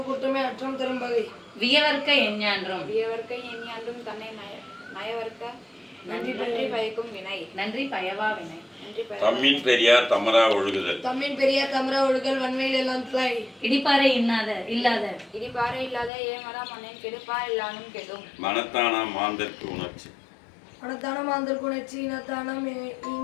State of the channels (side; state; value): right; drops out; at 16.1 s